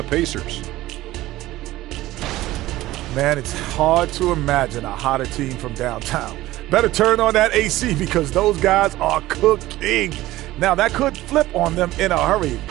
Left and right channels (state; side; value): quieter; left; 16.6 dB